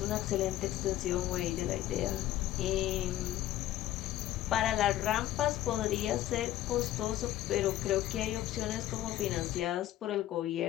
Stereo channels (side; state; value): right; quieter; 13.7 dB